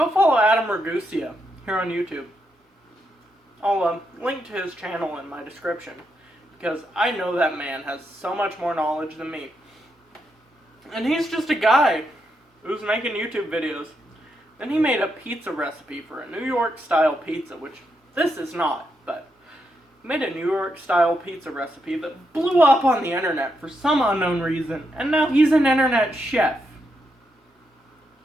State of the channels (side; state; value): both; normal; correlation 0.82